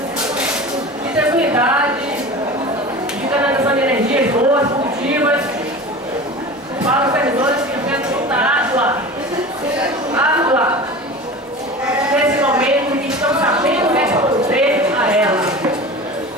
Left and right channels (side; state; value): both; normal; correlation 0.34